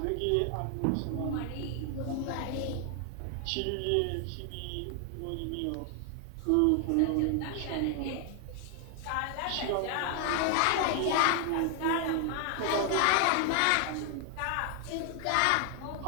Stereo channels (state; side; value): different; both; correlation 0.00